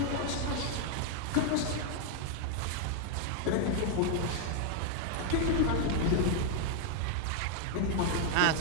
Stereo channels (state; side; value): different; both; correlation 0.00